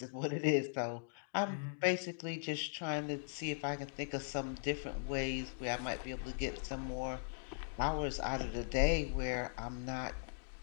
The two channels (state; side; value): silent; right; digital silence